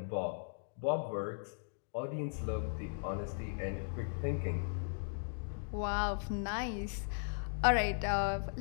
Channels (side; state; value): right; silent; digital silence